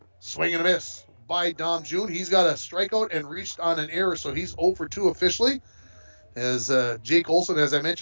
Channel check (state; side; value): inverted; both; correlation -1.00